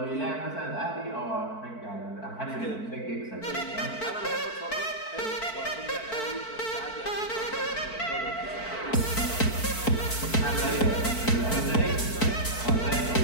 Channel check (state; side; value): late; right; 4.5 ms